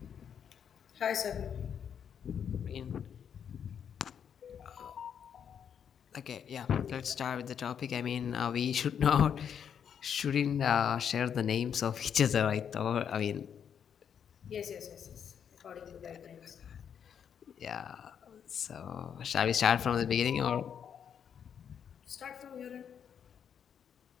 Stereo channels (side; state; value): right; quieter; 8.0 dB